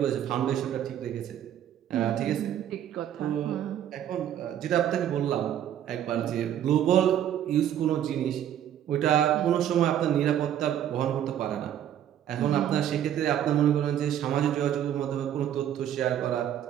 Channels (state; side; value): quieter; left; 10.6 dB